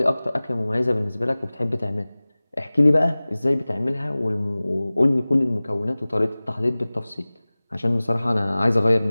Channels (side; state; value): both; inverted; correlation -0.99